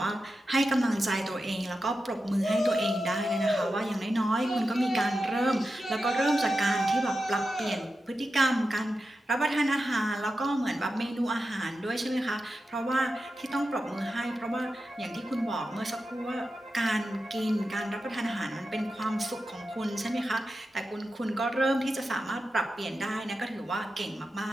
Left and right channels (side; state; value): both; normal; correlation 0.91